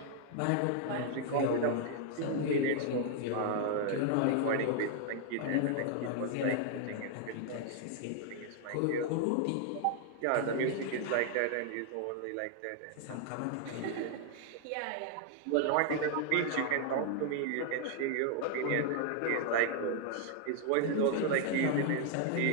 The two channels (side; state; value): both; different; correlation 0.00